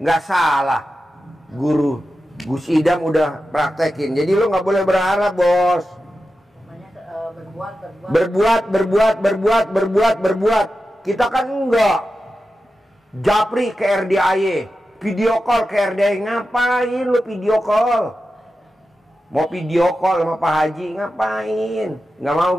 nggak salah. Guru Gus Idam udah praktekin. Jadi lo nggak boleh berharap bos. Berbuat. Kita kan enggak. Japri ke RDAY, video call ke RDAY. Ngapain lu video call? Mau video call sama Pak Haji, ngapain? Nggak mau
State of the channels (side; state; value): both; normal; correlation 0.91